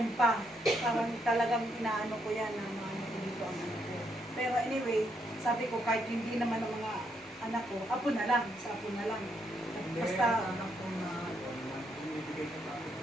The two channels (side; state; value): both; normal; correlation 0.76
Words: pa. Parang talagang inaano ko yan na maano ko dito ang anak ko. Pero anyway, sabi ko, kahit hindi naman ang mga anak ko, apo na lang, sa apo na lang. Basta, anak ko na binibigay ka pa.